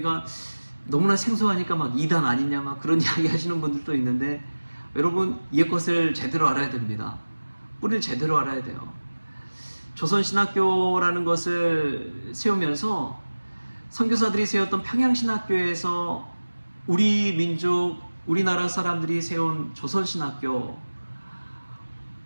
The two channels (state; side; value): inverted; both; correlation -1.00